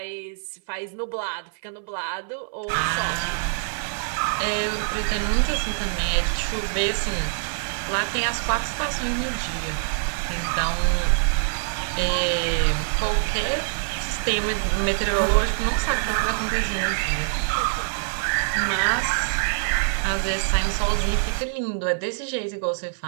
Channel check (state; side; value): silent; left; 58 dB below the other